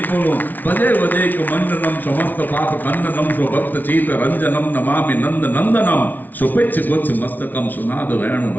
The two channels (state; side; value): late; right; 0.083 ms